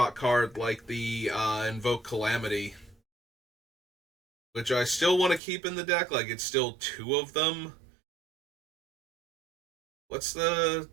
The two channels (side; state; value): left; drops out; at 5.4 s